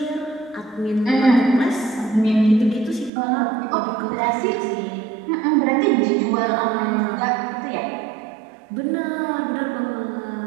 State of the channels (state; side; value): drops out; left; at 3.1 s